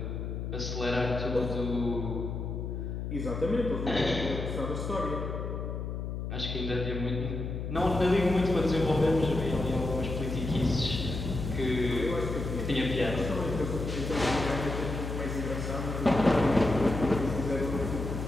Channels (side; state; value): left; noise; hum, 4 dB below the sound